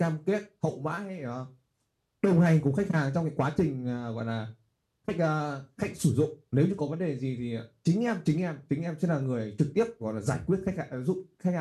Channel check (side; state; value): both; identical; correlation 1.00